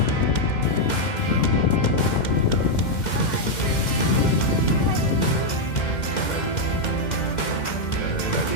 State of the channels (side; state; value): right; late; 2.1 ms